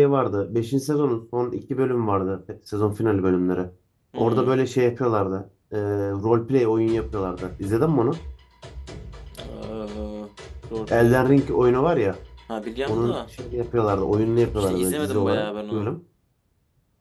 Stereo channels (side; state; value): both; identical; correlation 1.00